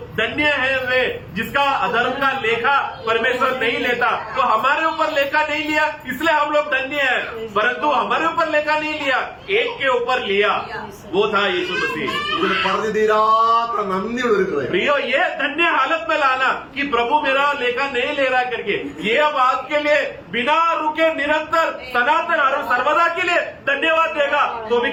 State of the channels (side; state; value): both; identical; correlation 1.00